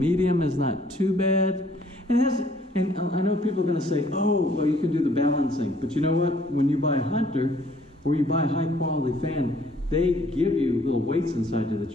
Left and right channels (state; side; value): normal; both; correlation 0.61